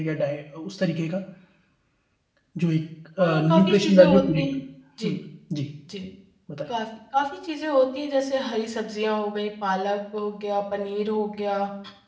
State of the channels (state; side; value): identical; both; correlation 1.00